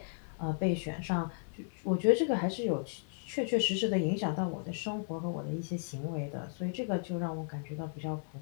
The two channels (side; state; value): right; silent; 55 dB below the other